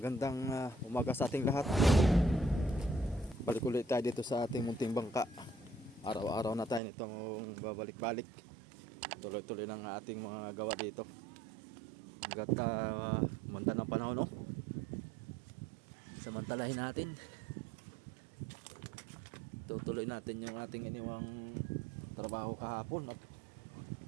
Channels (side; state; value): left; drops out; at 6.8 s